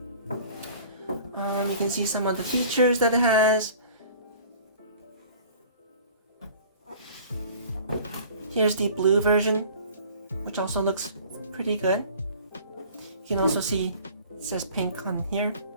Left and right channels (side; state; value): both; inverted; correlation -0.47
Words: You can see some of the features that it has. Here's the blue version, which also looks pretty good. You can also see it says pink on here.